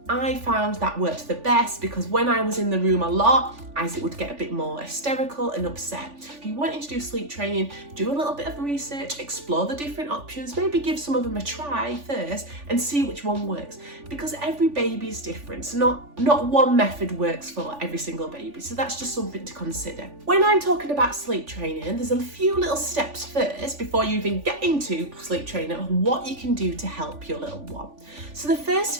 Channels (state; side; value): late; left; 3.5 ms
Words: I found that worked the best, because when I was in the room a lot, Isaac would get a bit more hysterical and upset. If you wanted to do sleep training, do a little bit of research, explore the different options, maybe give some of them a try first and see which one works, because every baby is different. So not one method works for every single baby. So that's just something to consider. When I'm talking about sleep training, there's a few little steps first before you even get into sleep training of what you can do to help your little one. So the first